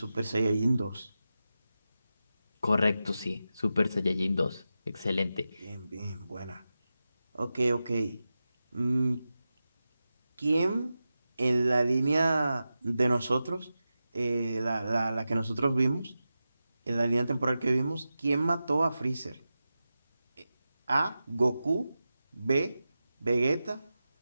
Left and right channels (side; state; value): both; inverted; correlation -0.92